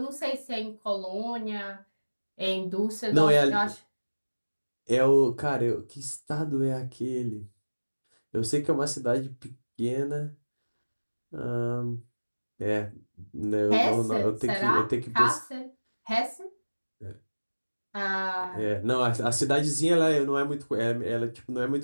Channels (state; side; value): inverted; both; correlation -1.00